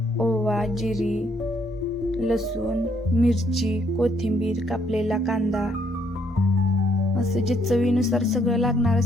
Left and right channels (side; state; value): both; normal; correlation 0.70